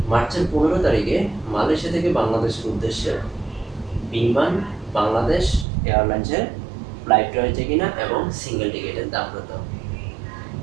মার্চের 15 তারিখে মালয়েশিয়া থেকে বাংলাদেশের উদ্দেশ্যে বিমান বাংলাদেশ এয়ারলাইন্সের ফ্লাইট রয়েছে কিনা এবং সিঙ্গেল টিকিটের দাম কত।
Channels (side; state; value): left; drops out; at 5.7 s